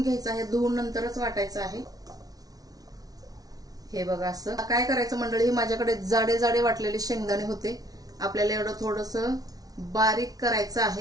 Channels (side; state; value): left; late; 0.18 ms